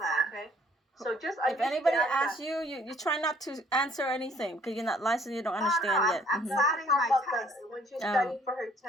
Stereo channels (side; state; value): both; normal; correlation 0.60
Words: Okay. So just if anybody asks you, you try not to answer anything because you're not licensed. You don't understand yet. I'm starting my test. When she's studying for her